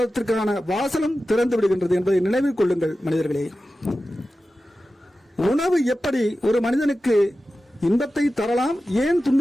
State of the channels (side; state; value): both; normal; correlation 0.94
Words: வாசலும் திறந்து விடுகின்றது என்பதை நினைவில் கொள்ளுங்கள் மனிதர்களே. உணவு எப்படி ஒரு மனிதனுக்கு இன்பத்தை தரலாம், ஏன்